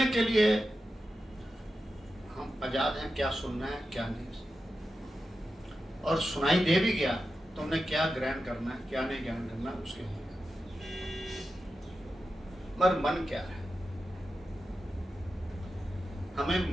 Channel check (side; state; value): both; normal; correlation 0.91